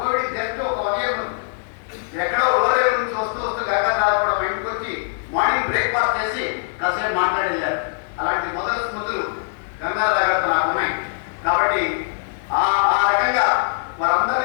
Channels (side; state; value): right; silent; digital silence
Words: జస్ట్ ఒక 1 year ముందు ఎక్కడో లోరేరు నుంచి వస్తూ గంగాధరరావు కూడా బయటకు వచ్చి మార్నింగ్ బ్రేక్ఫాస్ట్ చేసి కాసేపు మాట్లాడి వెళ్ళారు. అలాంటి మొదటి స్మృతులు గంగాధరరావు గారితో నాకు ఉన్నాయి. కాబట్టి ఆ రకంగా